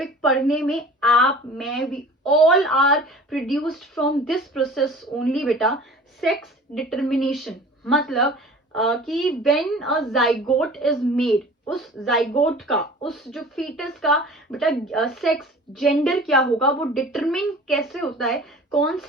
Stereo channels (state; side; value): normal; both; correlation 0.43